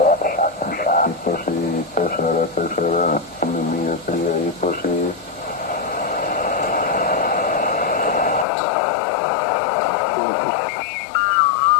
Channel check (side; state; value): right; drops out; at 8.5 s